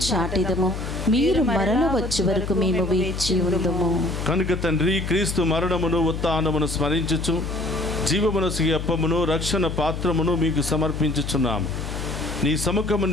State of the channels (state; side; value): noise; left; hum, 6 dB below the sound